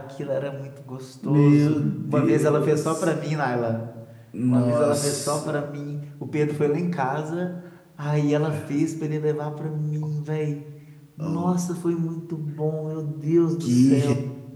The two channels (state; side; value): identical; both; correlation 1.00